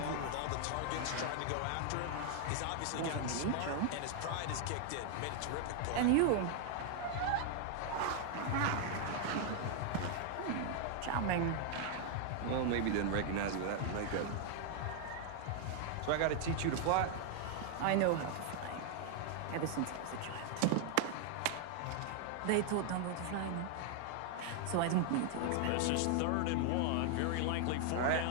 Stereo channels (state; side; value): different; both; correlation 0.00